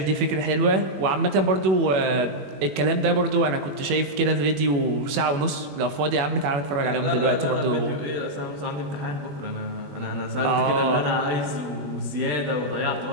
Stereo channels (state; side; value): late; left; 21 ms